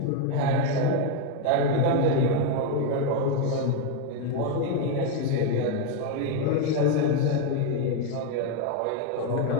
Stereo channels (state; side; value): different; both; correlation 0.02